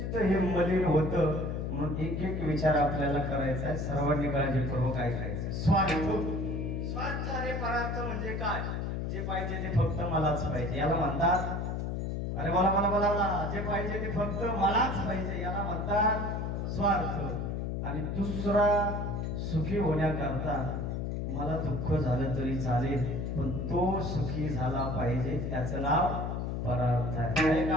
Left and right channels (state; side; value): noise; left; hum, 2 dB below the sound